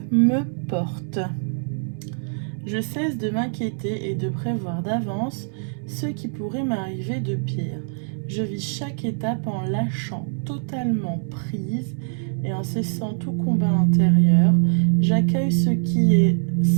me porte. Je cesse de m'inquiéter et de prévoir d'avance ce qui pourrait m'arriver de pire. Je vis chaque étape en lâchant totalement prise et en cessant tout combat intérieur. J'accueille ce qui est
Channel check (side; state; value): left; silent; digital silence